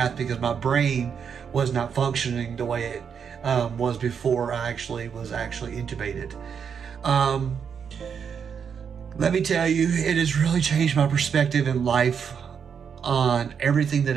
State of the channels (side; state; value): left; quieter; 7.0 dB